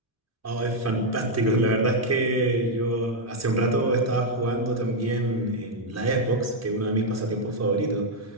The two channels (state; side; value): normal; both; correlation 0.00